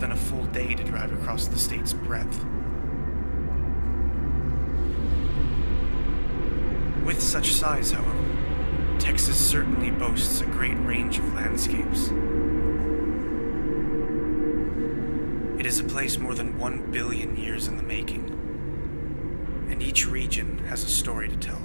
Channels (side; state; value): both; inverted; correlation -1.00